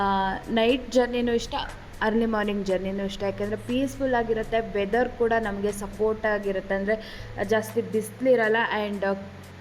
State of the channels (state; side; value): identical; both; correlation 1.00